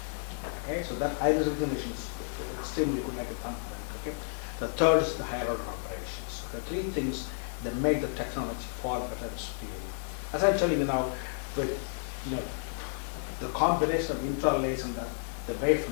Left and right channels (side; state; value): right; silent; 57 dB below the other